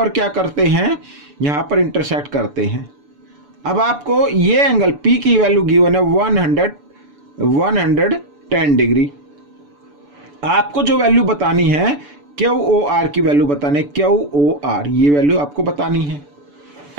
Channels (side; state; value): left; late; 6.9 ms